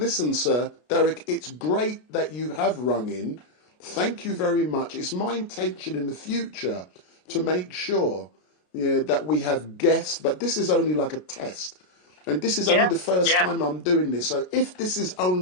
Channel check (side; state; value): right; late; 33 ms